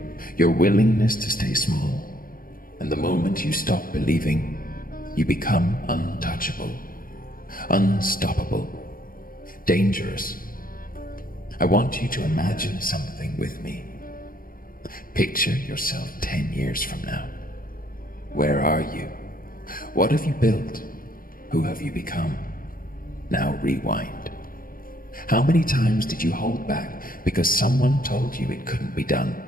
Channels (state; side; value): late; right; 0.41 ms